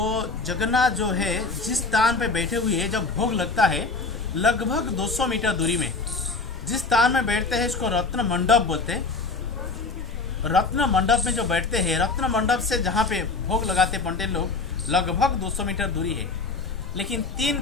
जगन्नाथ जो है जिस स्थान पे बैठे हुए हैं, जब भोग लगता है लगभग 200 मीटर दूरी में जिस स्थान में बैठते हैं इसको रत्न मंडप बोलते हैं। रत्न मंडप में जो बैठते हैं, रत्न मंडप से जहाँ पे भोग लगाते पंडित लोग लगभग 200 मीटर दूरी है। लेकिन 3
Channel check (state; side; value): quieter; right; 4.0 dB